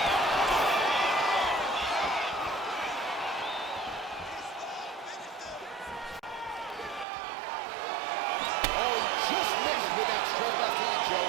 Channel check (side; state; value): left; drops out; at 7.1 s